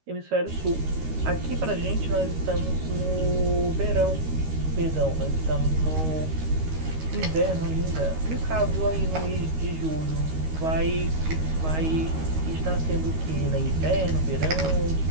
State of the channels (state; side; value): late; left; 13 ms